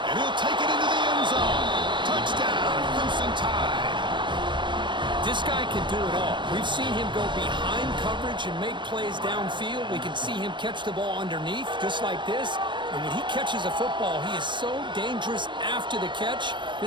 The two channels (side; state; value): left; late; 0.23 ms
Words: And he'll take it into the end zone. Touchdown, Crimson Tide. This guy can do it all. We've seen him go behind coverage and make plays downfield. We can see him catch the ball underneath, just like this. And when he catches a football, he is so dangerous after the catch.